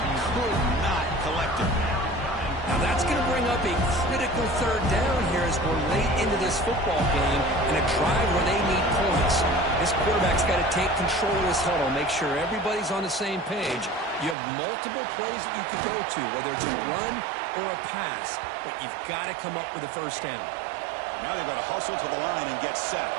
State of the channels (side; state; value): left; drops out; at 14.4 s